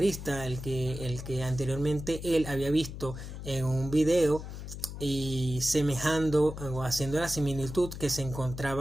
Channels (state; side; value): noise; left; hum, 9 dB below the sound